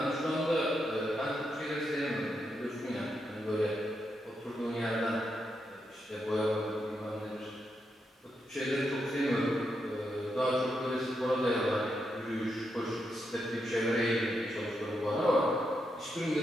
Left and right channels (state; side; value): normal; both; correlation 0.83